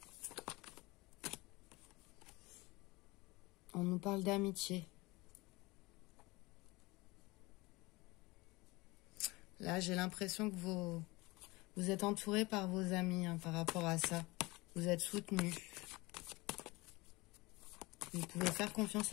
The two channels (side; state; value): right; quieter; 22.9 dB